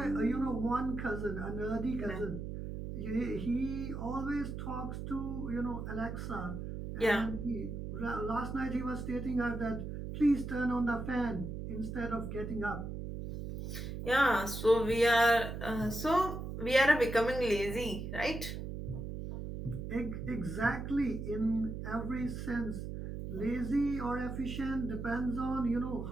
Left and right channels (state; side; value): noise; right; hum, 6 dB below the sound